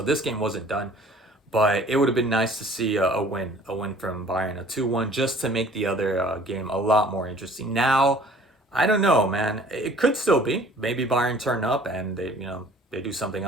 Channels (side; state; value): both; normal; correlation 0.51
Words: this game wasn't done, but it would have been nice to see a win from Bayern, a 2-1, just to make the other game a lot more interesting. Now, I don't know, man. It could still be. Maybe Bayern turn up and they do something